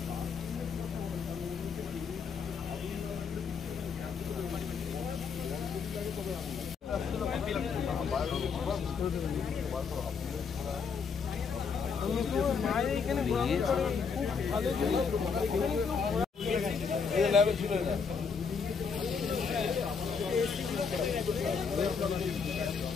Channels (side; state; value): right; quieter; 5.7 dB